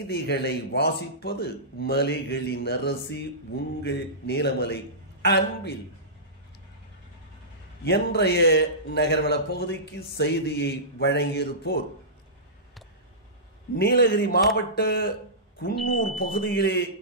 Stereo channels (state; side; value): normal; both; correlation -0.20